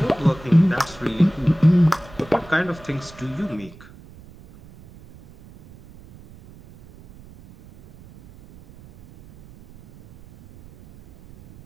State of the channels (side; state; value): right; noise; rumble, 22 dB below the sound